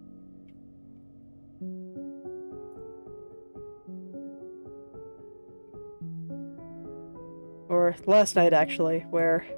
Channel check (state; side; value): inverted; both; correlation -1.00